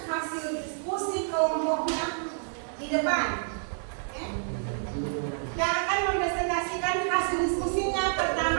hasil diskusi kelompoknya di depan. Oke? Yang akan mempresentasikan hasil diskusinya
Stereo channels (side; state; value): left; silent; digital silence